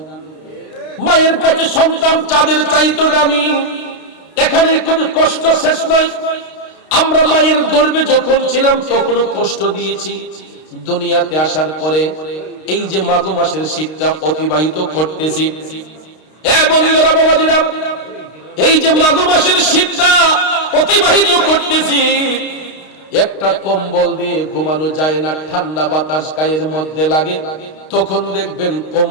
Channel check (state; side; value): late; right; 32 ms